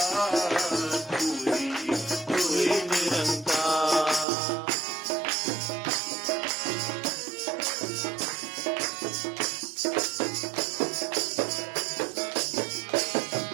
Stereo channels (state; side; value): drops out; left; at 4.2 s